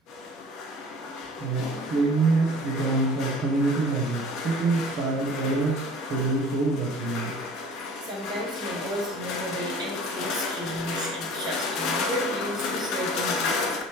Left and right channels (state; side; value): normal; both; correlation 0.46